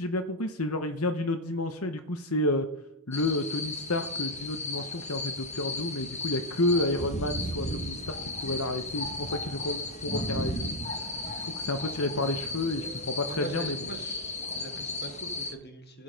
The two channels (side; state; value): both; normal; correlation 0.01